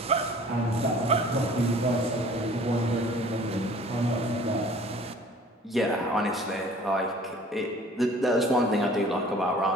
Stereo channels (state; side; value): normal; both; correlation 0.49